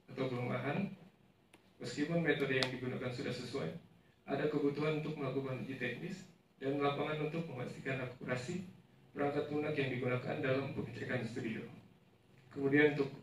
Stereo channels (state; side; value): identical; both; correlation 1.00